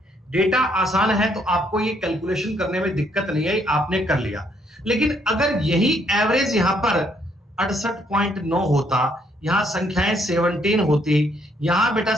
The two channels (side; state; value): both; normal; correlation 0.70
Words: डेटा आसान है तो आपको ये कैलकुलेशन करने में दिक्कत नहीं आई, आपने कर लिया। लेकिन अगर यही एवरेज यहां पर 68.9 होता, यहां संख्याएं 17 होती, यहां बेटा